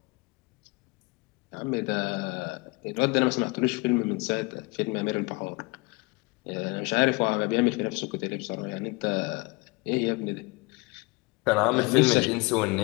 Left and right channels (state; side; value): quieter; right; 26.2 dB